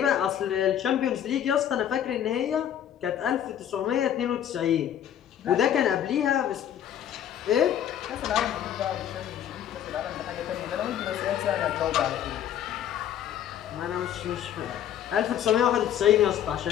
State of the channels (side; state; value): right; quieter; 10.2 dB